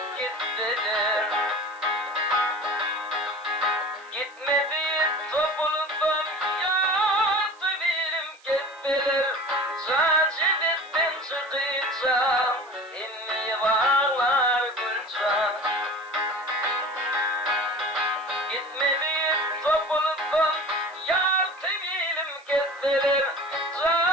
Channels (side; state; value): right; noise; hiss, 28 dB below the sound